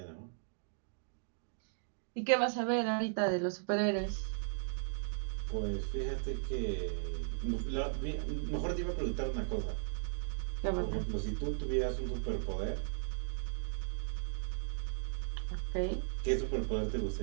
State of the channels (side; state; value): left; silent; digital silence